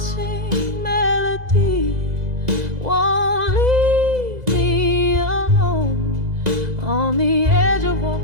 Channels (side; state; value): left; late; 2.0 ms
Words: melody, won't leave me alone. On the edge I